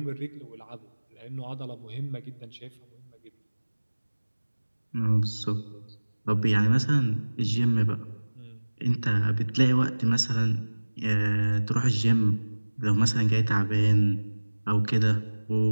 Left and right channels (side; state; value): both; inverted; correlation -1.00